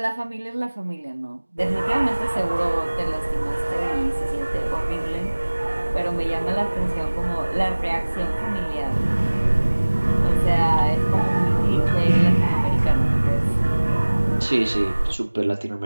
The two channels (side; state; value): both; inverted; correlation -1.00